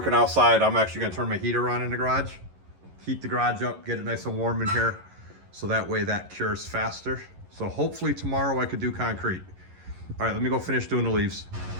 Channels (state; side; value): late; left; 11 ms